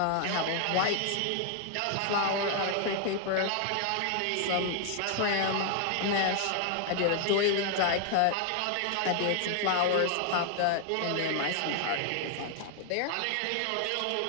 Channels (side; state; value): both; different; correlation 0.00